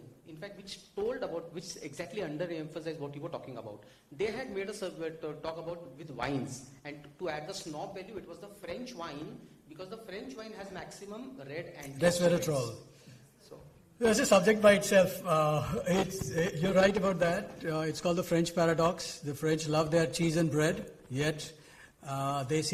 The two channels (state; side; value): identical; both; correlation 1.00